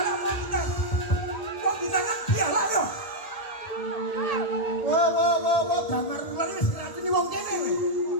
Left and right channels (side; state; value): right; late; 1.8 ms